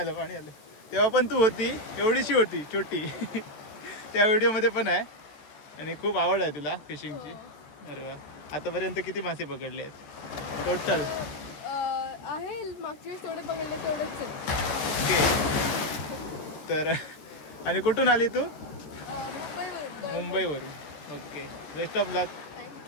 तेव्हा पण तू होती, एवढीशी होती छोटी. त्या व्हिडिओमध्ये पण आहे. आणि खूप आवड आहे तुला फिशिंगची. अरे वा. आतापर्यंत किती मासे पकडले आहेत टोटल? आहे मागच्या वेळेस तेवढे पकडले तेवढेच आहे. ओके. तर आणि कुठून आली तू? मुंबईवरून. मुंबईवरून. ओके, बेस्ट ऑफ लक.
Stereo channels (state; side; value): late; right; 14 ms